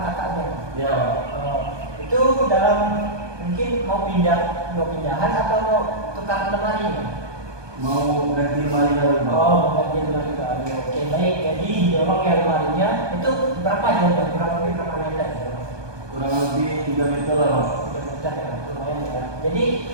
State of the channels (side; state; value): left; late; 1.2 ms